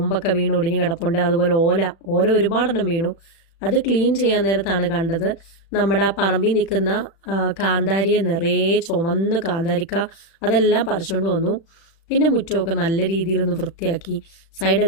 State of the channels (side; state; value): right; late; 36 ms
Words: വീണ് ഒടിഞ്ഞ് കിടപ്പുണ്ട്. അതുപോലെ ഓല ഒരുപാടെണ്ണം വീണു. അത് ക്ലീൻ ചെയ്യാൻ നേരത്താണ് കണ്ടത് നമ്മുടെ ആ പറമ്പിൽ നിൽക്കുന്ന കാന്താരിയെ നിറയെ ചുമന്ന് കാന്താരിക്ക അതെല്ലാം പറിച്ചുകൊണ്ട് വന്നു. പിന്നെ മുറ്റമൊക്കെ നല്ല രീതിയിലൊന്ന് വൃത്തിയാക്കി.